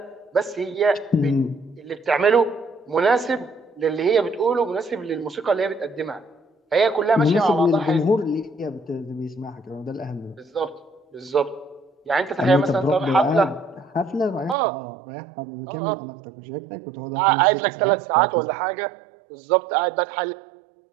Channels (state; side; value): drops out; left; at 14.6 s